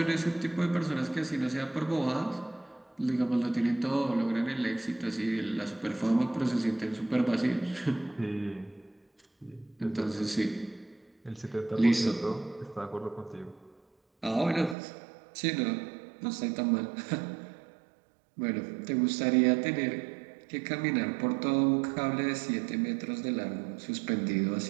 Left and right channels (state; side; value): drops out; left; at 14.8 s